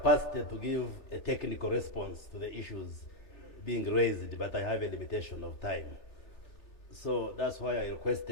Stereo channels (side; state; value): right; late; 3.4 ms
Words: to give a technical response to the issues being raised, but I have a limitation of time. So that's why I